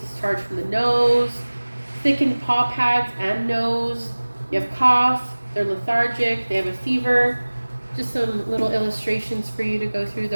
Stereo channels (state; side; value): inverted; both; correlation -1.00